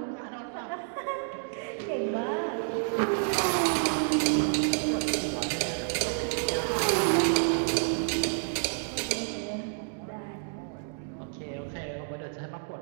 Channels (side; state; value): left; silent; digital silence